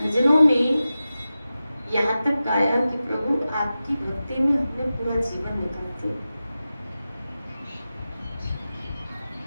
में यहाँ तक गाया कि प्रभु आपकी भक्ति में हमने पूरा जीवन निकाल दिया।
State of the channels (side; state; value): both; inverted; correlation -0.94